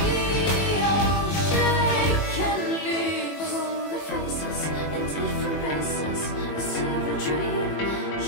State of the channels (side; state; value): right; late; 21 ms